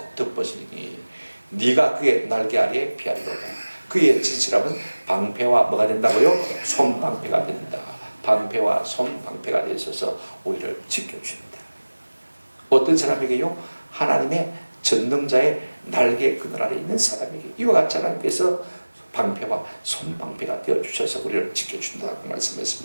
덮으시니 네가 그의 날개 아래에 피하리로다. 그의 진실함은 방패와 뭐가 된다고요? 손방패가 된다. 방패와 손방패가 되어 있어서 우리를 지켜줍니다. 어떤 사람에게요? 하나님의 전능자의 날개 그늘 아래 있는 사람에게 이와 같이 하나님께서 방패와 손방패가 되어주셔서 우리를 지켜준다고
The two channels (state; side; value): inverted; both; correlation -1.00